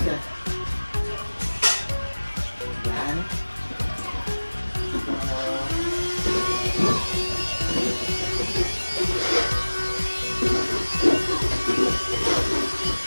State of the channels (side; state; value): both; inverted; correlation -1.00